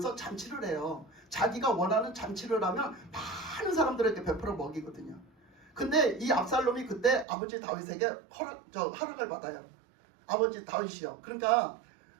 잔치를 해요. 자기가 원하는 잔치를 하면 많은 사람들에게 베풀어 먹이거든요. 근데 이 압살롬이 그때 아버지 다윗에게 허락을 받아요. 아버지 다윗이요. 그러니까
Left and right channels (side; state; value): left; drops out; at 7.2 s